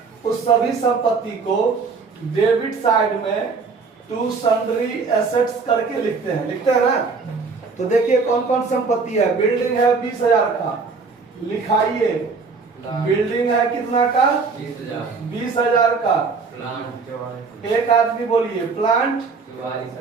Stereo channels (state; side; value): quieter; left; 4.7 dB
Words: उस सभी संपत्ति को डेबिट साइड में टू सन्ड्री एसेट्स करके लिखते हैं ना। तो देखिए कौन कौन संपत्ति है। बिल्डिंग है 20,000 का, लिखाइए। बिल्डिंग है कितना का? 20,000 का। एक आदमी बोलिए। Plant